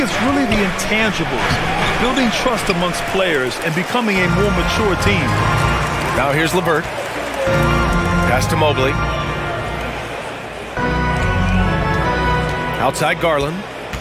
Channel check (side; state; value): both; identical; correlation 1.00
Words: really the intangibles, building trust amongst players and becoming a more mature team. Now here's LeVert. Pass to Mobley. Outside Garland.